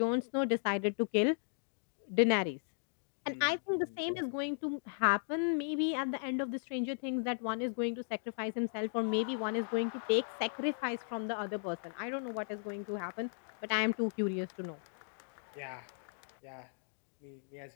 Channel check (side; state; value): right; silent; digital silence